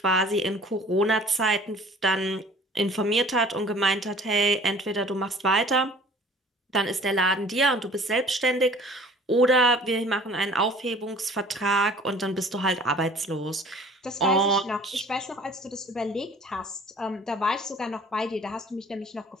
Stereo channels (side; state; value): both; normal; correlation 0.50